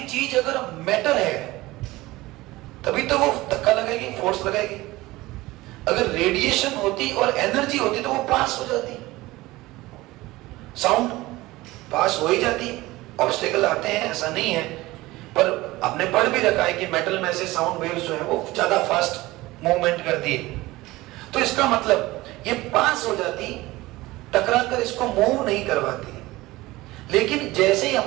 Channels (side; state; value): left; quieter; 19.2 dB